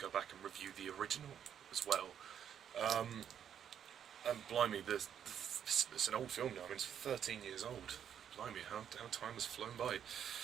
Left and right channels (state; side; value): quieter; left; 8.9 dB